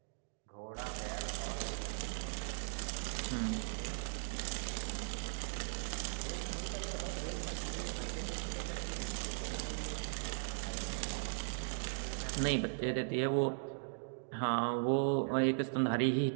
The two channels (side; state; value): left; silent; digital silence